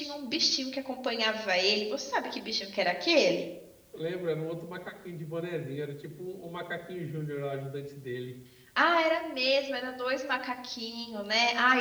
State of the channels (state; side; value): identical; both; correlation 1.00